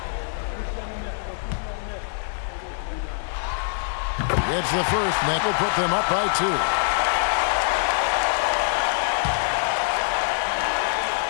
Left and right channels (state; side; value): silent; right; 62 dB below the other